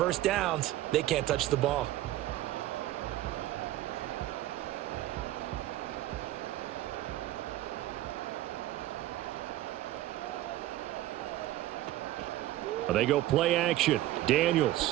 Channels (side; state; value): left; quieter; 15.0 dB